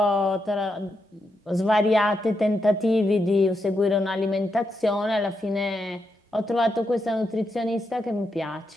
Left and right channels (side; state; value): both; normal; correlation 0.83